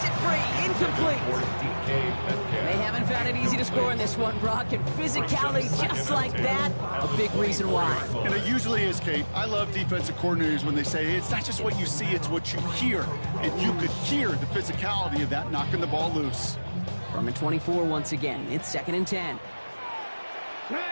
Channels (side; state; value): both; inverted; correlation -1.00